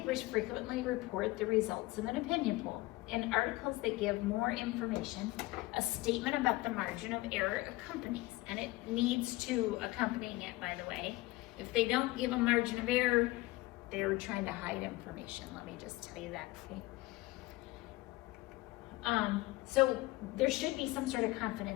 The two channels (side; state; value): right; quieter; 20.1 dB